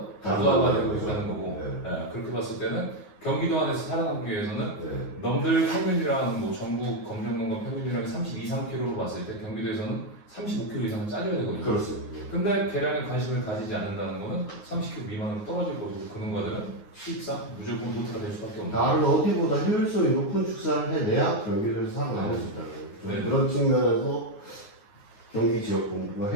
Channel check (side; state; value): right; late; 9.5 ms